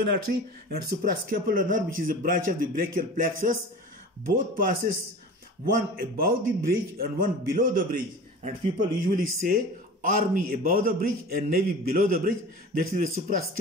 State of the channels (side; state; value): both; normal; correlation 0.37